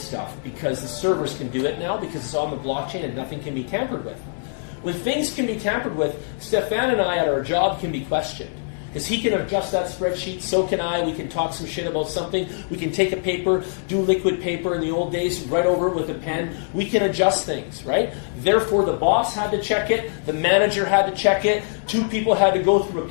because the servers can do it now because it's on the blockchain and nothing can be tampered with. When things can be tampered with, Stefan and I at our job can be questioned. Because he can adjust that spreadsheet, so can I. We can talk some shit about something. We can take a paper, do liquid paper in the old days, write over it with a pen. We can adjust things, right? Therefore, the boss had to check it. The manager had to check it. 2 people had to go through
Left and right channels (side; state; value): right; silent; digital silence